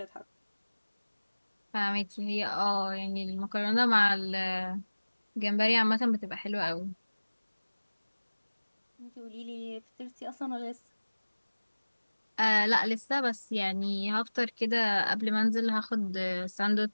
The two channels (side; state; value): both; inverted; correlation -1.00